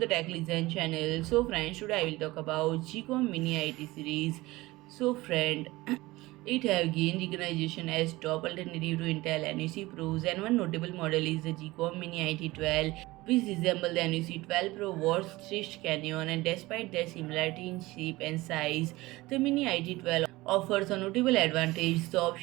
Tech Listen channel. So friends, today I will talk about GEEKOM Mini IT series. So friend, it have gained recognition as top alternative to Intel NUC Pros, and one notable model is the GEEKOM Mini IT12, which resemble the NUC 12 Pro Wars stitched canyon, and despite their similarity in shape and size, the Mini IT12 offers a notable advantage: the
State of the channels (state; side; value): quieter; left; 19.9 dB